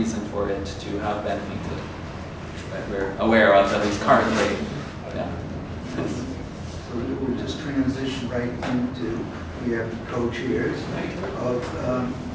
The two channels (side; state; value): both; identical; correlation 1.00